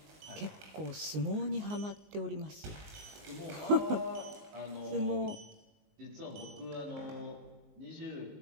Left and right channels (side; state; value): left; late; 19 ms